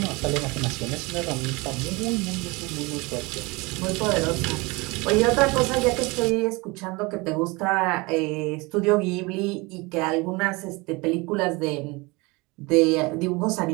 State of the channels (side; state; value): left; quieter; 25.1 dB